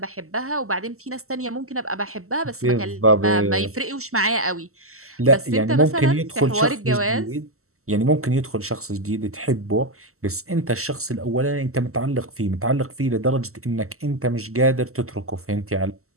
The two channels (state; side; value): late; left; 0.63 ms